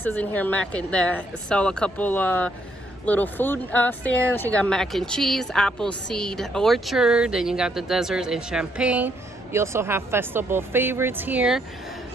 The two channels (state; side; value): normal; both; correlation 0.72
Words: in here, that sell a couple little food stands. You got mac and cheese, Appleseed Orchard, then you got the desserts and champagne. You also have festival favorites here.